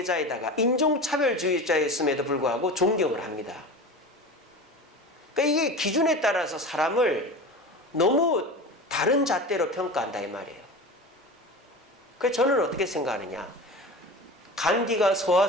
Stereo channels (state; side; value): normal; both; correlation 0.31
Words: 인종차별주의자였음에도 불구하고 존경을 합니다. 그러니까 이게 기준에 따라서 사람을 너무 다른 잣대로 평가한다 이 말이에요. 그래서 저는 어떻게 생각하느냐. 간디가